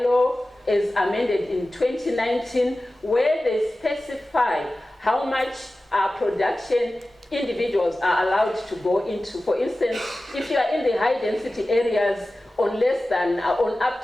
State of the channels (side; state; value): both; normal; correlation 0.96